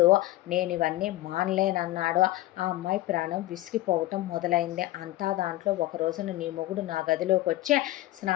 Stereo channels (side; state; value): right; quieter; 16.7 dB